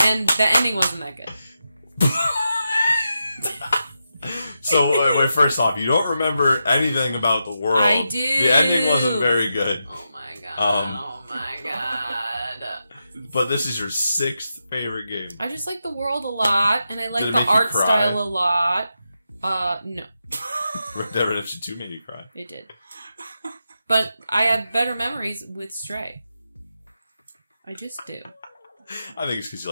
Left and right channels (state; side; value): inverted; both; correlation -0.87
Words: And the ending wasn't that good. So, wait, first off, you don't remember anything about the world. I do. The ending wasn't very good. Oh my god. Oh my god. But this is your 6th favorite game. I just like the world a lot, and I like the art style a lot. No. Red Dead Redemption 2 made you cry. It did. But I have better memories with Stray. I just do. I think it's because you